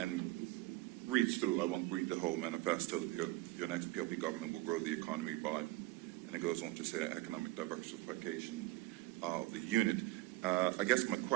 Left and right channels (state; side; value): quieter; left; 19.3 dB